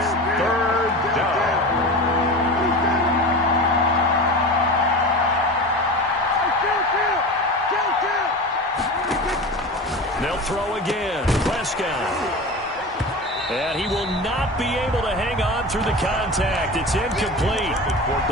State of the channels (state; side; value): normal; both; correlation 0.30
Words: 3rd down. They'll throw again. Prescott. And he will not be able to hang on through the contact. It's incomplete.